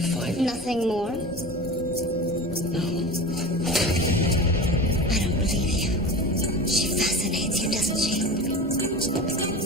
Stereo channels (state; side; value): normal; both; correlation 0.32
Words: him. Nothing more? No. I don't believe you. She fascinates you, doesn't she?